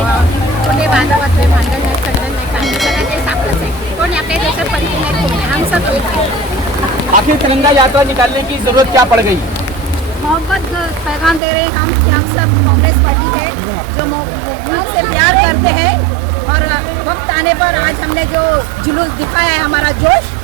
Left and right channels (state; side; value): drops out; left; at 11.4 s